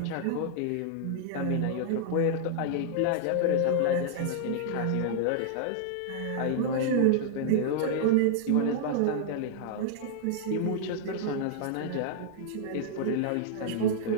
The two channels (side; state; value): both; different; correlation -0.01